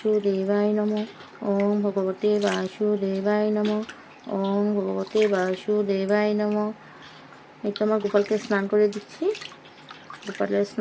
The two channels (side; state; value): both; identical; correlation 1.00